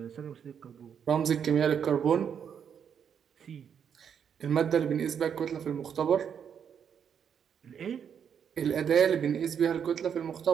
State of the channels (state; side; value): quieter; left; 7.8 dB